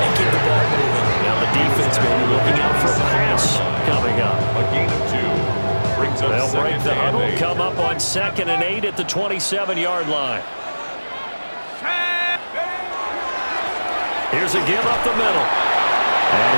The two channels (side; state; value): both; inverted; correlation -1.00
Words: keep the ball moving. Now the defense may be looking out for a pass coming up. A gain of 2. Brings up They'll break the huddle, 8. come up on 2nd and 8 at the 27-yard line. Here's a give up the middle. And